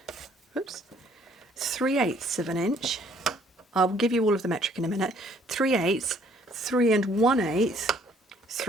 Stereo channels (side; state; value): both; normal; correlation 0.61